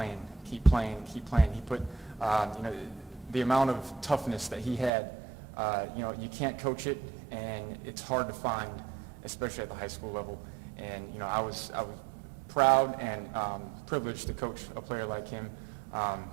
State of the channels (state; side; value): drops out; left; at 4.9 s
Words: keep playing, keep playing. He put, the amount of toughness that he had, you can't coach it, and it's hard to find, especially at the high school level. And, I was proud and privileged to coach a player like him.